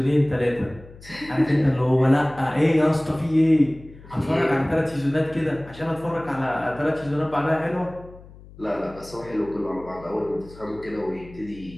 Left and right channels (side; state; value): left; noise; hum, 20 dB below the sound